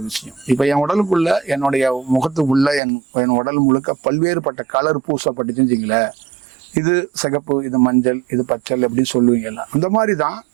விஷயம். இப்போ என் உடலுக்குள்ளே என்னுடைய முகத்துக்குள்ளே என் உடல் முழுக்க பல்வேறுபட்ட கலர் பூசப்பட்டுச்சுன்னு வச்சுங்களேன், இது சிகப்பு, இது மஞ்சள், இது பச்சை அப்படின்னு சொல்லுவீங்கல்ல, அந்த மாதிரி தான்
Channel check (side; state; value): left; drops out; at 2.8 s